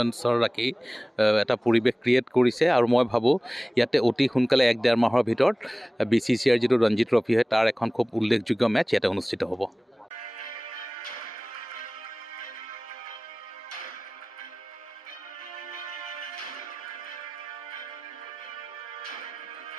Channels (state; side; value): normal; both; correlation 0.98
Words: ৰাখি এটা পৰিৱেশ ক্ৰিয়েট কৰিছে। আৰু মই ভাবোঁ ইয়াতে অতি সোনকালে 1-1.5 মাহৰ ভিতৰত BCCIৰ যিটো ৰঞ্জী ট্ৰফি হয় তাৰ এখন খুব উল্লেখযোগ্য মেটচ ইয়াতে অনুষ্ঠিত হ'ব।